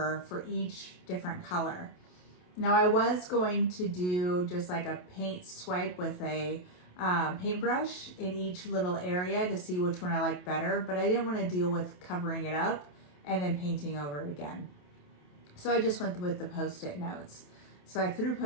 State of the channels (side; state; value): right; late; 28 ms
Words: for each different color. Now I was going to do just like a paint swipe with a paintbrush in each little area to see which one I liked better, but I didn't want to deal with covering it up and then painting over it again. So I just went with the Post-it notes. So I threw